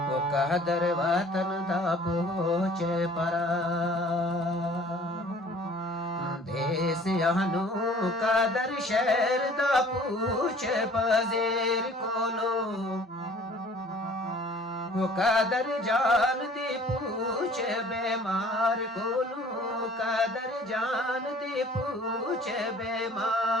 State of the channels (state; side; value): normal; both; correlation 0.51